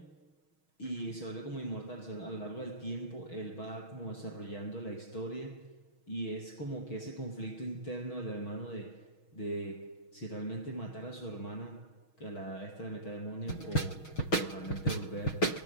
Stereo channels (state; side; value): late; right; 6.3 ms